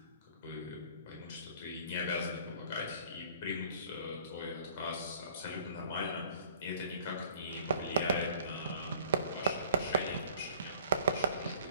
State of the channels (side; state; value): both; inverted; correlation -0.52